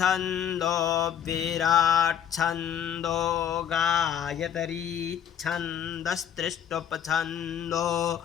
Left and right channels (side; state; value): right; quieter; 9.0 dB